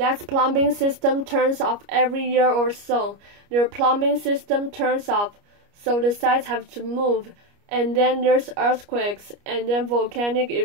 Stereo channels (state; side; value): late; left; 29 ms